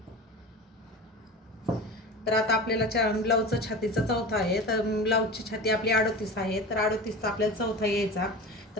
तर आता आपल्याला ब्लाऊजचा छातीचा चौथा आहे. तर ब्लाऊजची छाती आपली 38 आहे. तर 38चा आपल्याला चौथा यायचा.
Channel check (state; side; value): normal; both; correlation 0.31